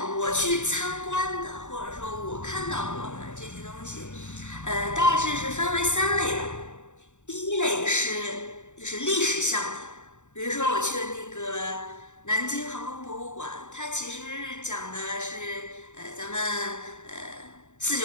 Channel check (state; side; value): late; right; 0.84 ms